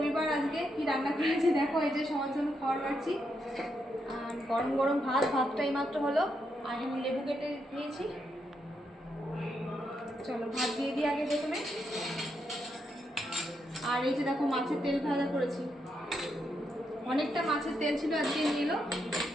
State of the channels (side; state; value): both; normal; correlation 0.81